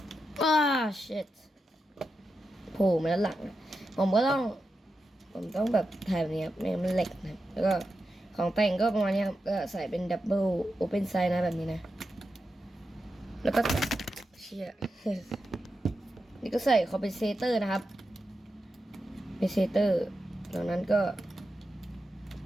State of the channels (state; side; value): normal; both; correlation 0.89